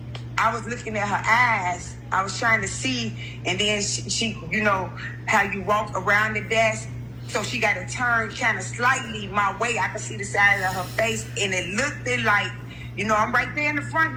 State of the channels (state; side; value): identical; both; correlation 1.00